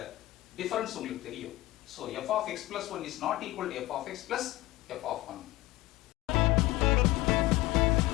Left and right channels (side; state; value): right; quieter; 17.6 dB